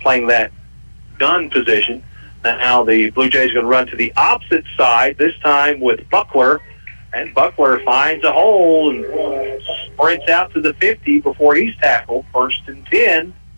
that gun position. Now the Blue Jays are going to run to the opposite side, this time with Buckler. And Buckler finds a hole and sprints out to the 50 before he's tackled. 1st and 10,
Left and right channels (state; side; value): inverted; both; correlation -1.00